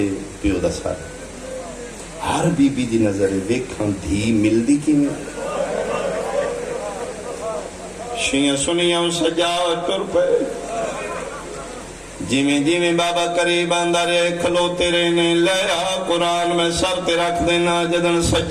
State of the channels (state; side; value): identical; both; correlation 1.00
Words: پیو دا سارے ہر بی بی دی نظر ویکھاں دھی مل دی کی میں شیعہ سنیاں سجاد کر پہ جیویں بابا قریب آندا رہے کھلوتے رہنے لیا قرآن میں سر تے رکھ دینا جدن